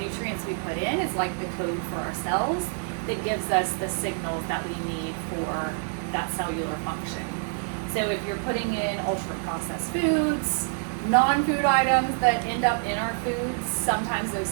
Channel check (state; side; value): silent; left; 57 dB below the other